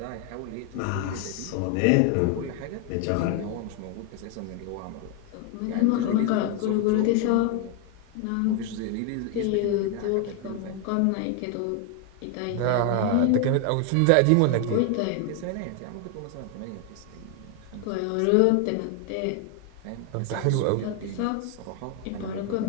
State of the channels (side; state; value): both; different; correlation 0.01